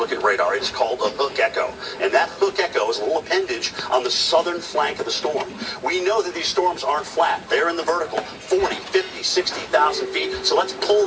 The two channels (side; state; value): both; identical; correlation 1.00